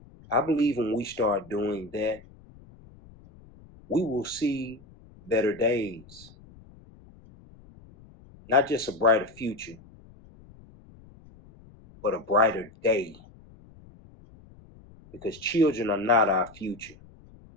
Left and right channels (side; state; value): left; noise; rumble, 23 dB below the sound